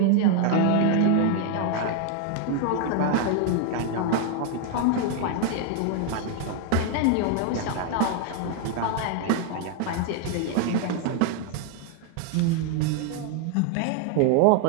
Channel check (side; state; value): both; different; correlation 0.01